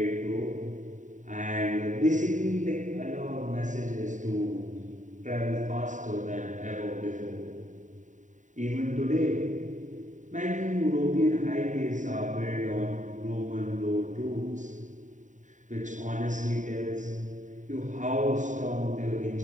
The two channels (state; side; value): late; left; 0.36 ms